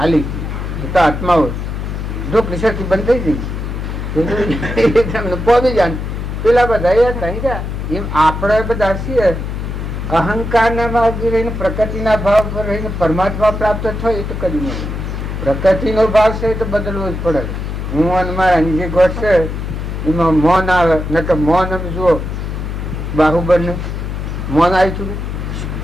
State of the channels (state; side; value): noise; left; hum, 5 dB below the sound